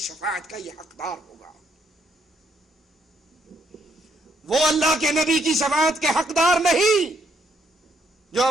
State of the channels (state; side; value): normal; both; correlation 0.73